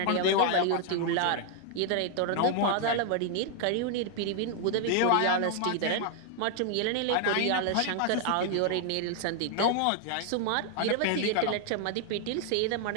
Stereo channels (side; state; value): both; different; correlation 0.00